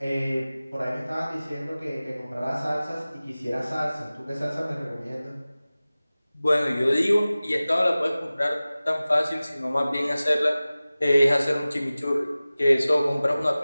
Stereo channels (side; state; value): both; inverted; correlation -0.97